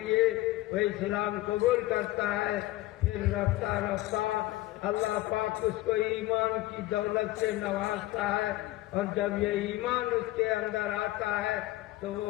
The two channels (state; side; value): quieter; right; 17.3 dB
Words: وہ اسلام قبول کرتا ہے. پھر رفتہ رفتہ اللہ پاک اس کو ایمان کی دولت سے نوازتا ہے، اور جب یہ ایمان اس کے اندر آتا ہے تو